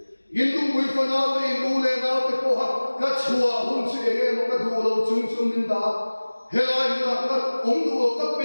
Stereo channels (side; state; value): both; inverted; correlation -1.00